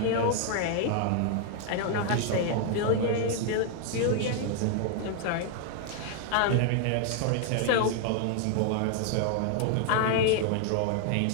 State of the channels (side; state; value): both; different; correlation 0.00